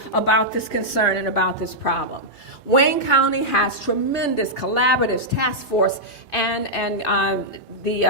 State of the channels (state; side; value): normal; both; correlation -0.08